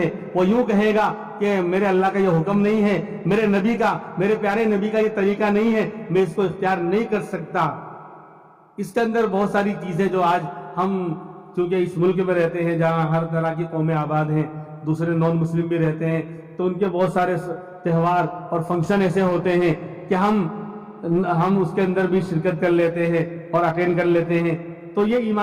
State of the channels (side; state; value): both; identical; correlation 1.00